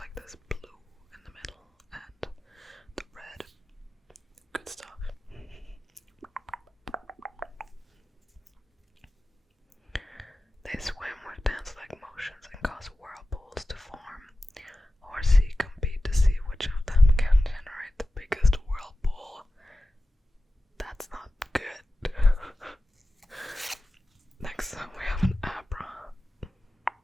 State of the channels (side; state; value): both; normal; correlation 0.94